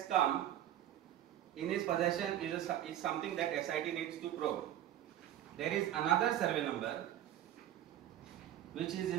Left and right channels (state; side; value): quieter; left; 11.9 dB